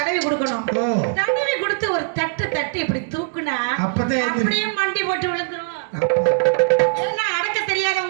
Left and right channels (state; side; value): silent; left; digital silence